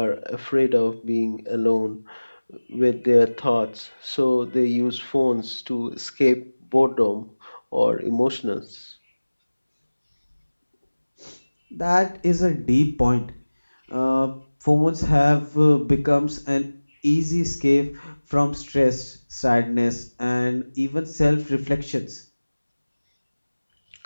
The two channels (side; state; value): both; inverted; correlation -1.00